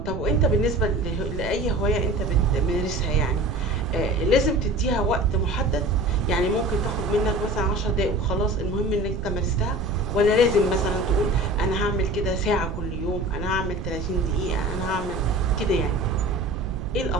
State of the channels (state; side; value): noise; right; rumble, 7 dB below the sound